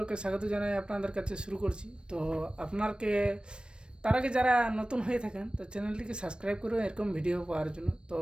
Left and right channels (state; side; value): late; left; 0.055 ms